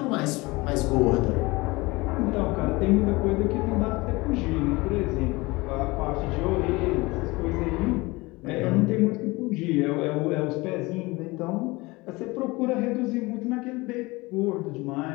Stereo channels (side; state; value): right; quieter; 22.9 dB